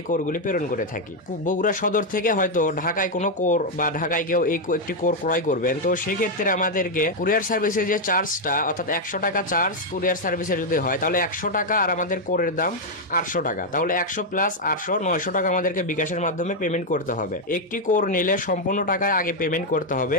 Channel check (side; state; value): both; normal; correlation 0.01